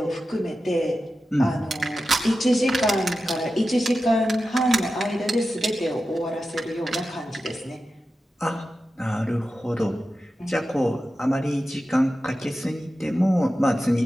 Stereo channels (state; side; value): normal; both; correlation 0.92